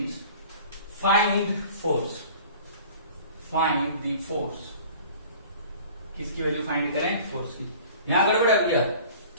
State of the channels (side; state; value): both; inverted; correlation -0.45